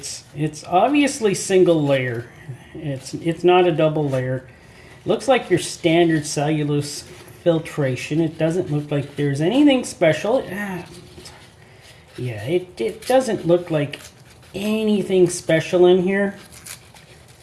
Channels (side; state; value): both; identical; correlation 1.00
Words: obviously single layer. It's not a double layer. Looks like your standard cellulose filtration. It doesn't look like there's anything special. Yeah, it doesn't look like anything special in here.